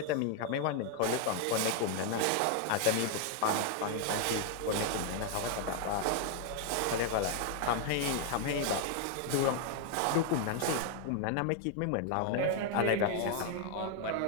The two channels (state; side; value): different; both; correlation 0.00